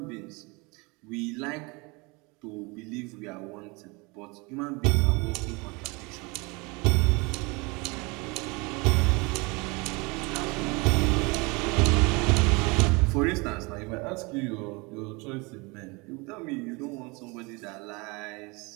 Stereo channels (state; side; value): quieter; left; 27.2 dB